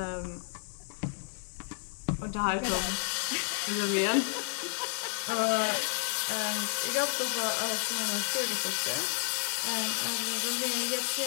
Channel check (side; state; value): right; silent; digital silence